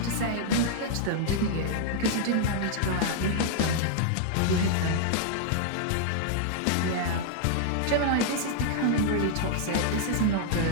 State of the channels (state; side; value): different; both; correlation -0.01